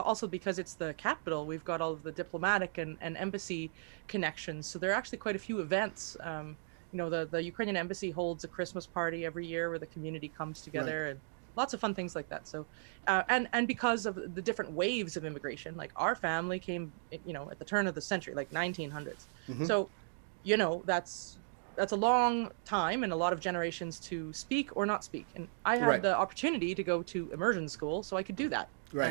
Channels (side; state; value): left; silent; digital silence